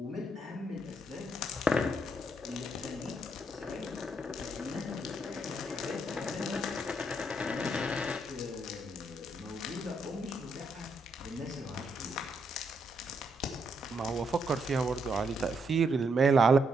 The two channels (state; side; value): normal; both; correlation 0.77